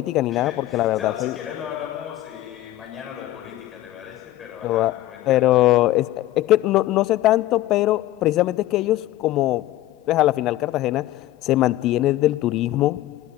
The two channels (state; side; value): quieter; right; 15.4 dB